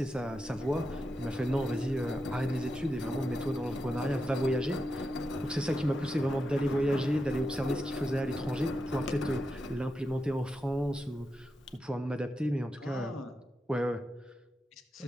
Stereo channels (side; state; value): both; normal; correlation 0.87